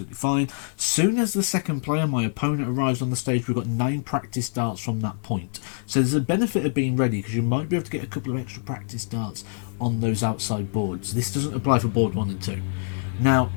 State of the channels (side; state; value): right; silent; digital silence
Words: fine. Soon as the second player, my opponent, arrives on the stage, we've got 9 practice darts from that point. So there's a benefit of being ready, because you might be able to get a couple of extra practice darts on those outside boards. This doesn't apply for board 1 and 2. Now,